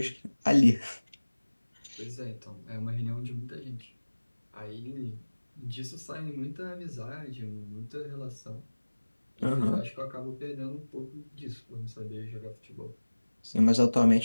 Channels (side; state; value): both; inverted; correlation -1.00